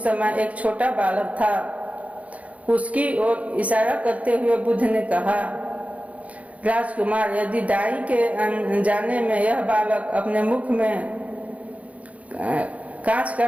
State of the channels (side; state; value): left; late; 0.067 ms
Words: समय एक छोटा बालक था। उसकी ओर इशारा करते हुए बुद्ध ने कहा, राजकुमार, यदि दाई के जाने में यह बालक अपने मुख में कांच का